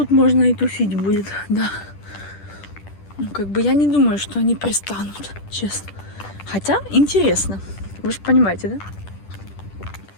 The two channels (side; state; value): right; late; 10 ms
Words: можно и тусить будет, да. Ну, как бы я не думаю, что они пристанут, честно. Хотя интересно, вы же понимаете, да?